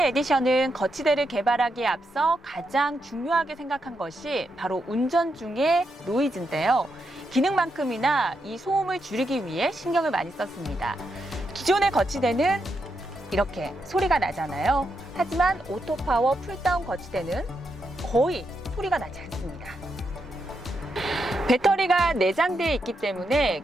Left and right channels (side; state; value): both; normal; correlation 0.83